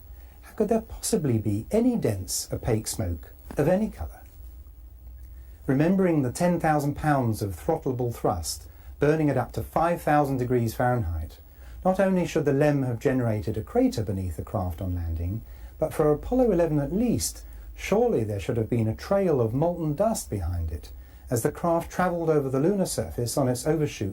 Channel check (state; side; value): identical; both; correlation 1.00